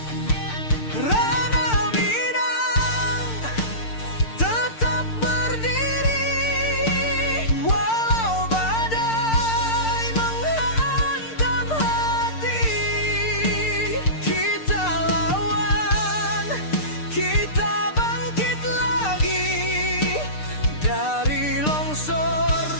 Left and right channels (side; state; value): right; late; 6.6 ms